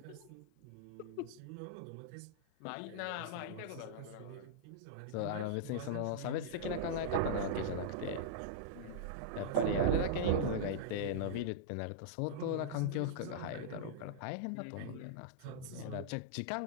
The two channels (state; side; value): different; both; correlation -0.02